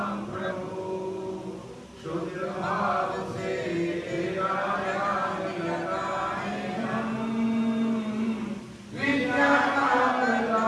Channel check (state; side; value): identical; both; correlation 1.00